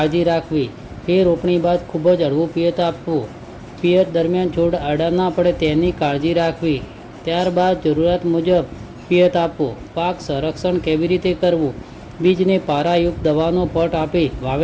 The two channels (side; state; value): both; identical; correlation 1.00